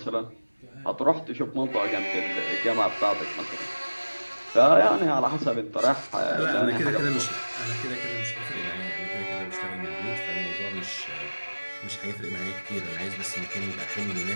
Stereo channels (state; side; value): inverted; both; correlation -1.00